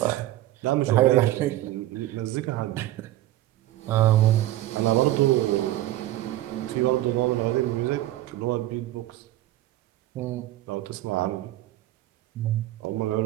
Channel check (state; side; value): quieter; left; 15.1 dB